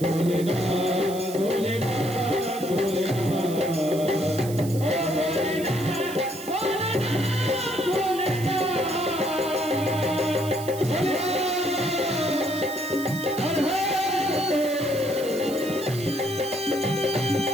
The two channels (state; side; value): noise; right; hiss, 14 dB below the sound